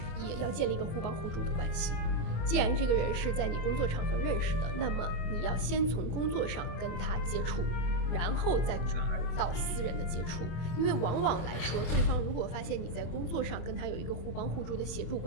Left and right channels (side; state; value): right; late; 24 ms